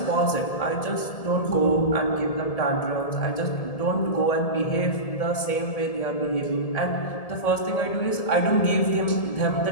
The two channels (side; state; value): right; late; 1.7 ms